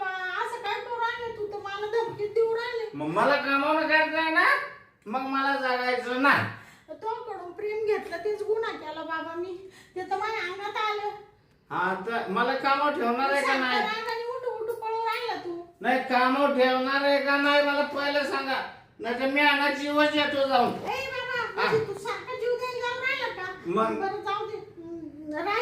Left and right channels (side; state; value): both; identical; correlation 1.00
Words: असं काय करू राहिले तू? तर मला धमकी देऊ राहिले. मग मला कामावून काढताय ना, मग मला जगायचं नाही. तोकडून प्रेम घेतलं तेच गुन्हा केला बाबा मी. ते तर माझ्या अंगात आलं. हा, तर मला कामावर ठेवणार आहे का नाही? रागाने उठू उठू पळू राहिला तू. नाही, कामावर ठेवणार आहे का नाही मला पहिलं सांगा. नाही तर मी आणा जीवच येतो जाऊन. ए बाबा, म्हणजे तू सारखा जीव द्यायला जाऊ राहिला का? मग? बरं जाऊ दे.